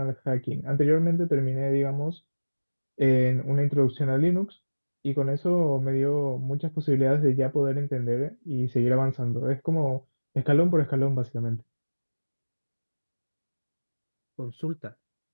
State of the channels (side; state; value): both; inverted; correlation -1.00